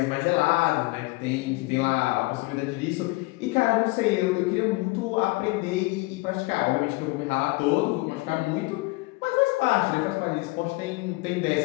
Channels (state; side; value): quieter; right; 23.8 dB